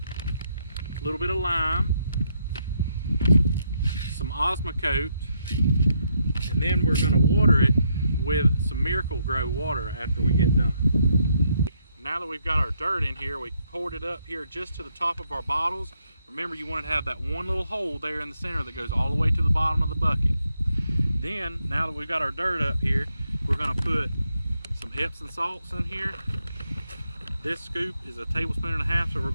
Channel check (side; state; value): both; inverted; correlation -0.77